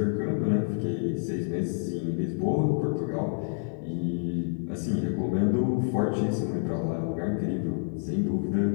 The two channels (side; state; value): right; silent; 55 dB below the other